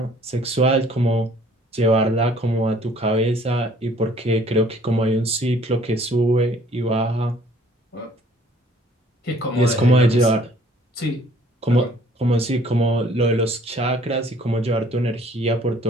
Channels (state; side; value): normal; both; correlation 0.57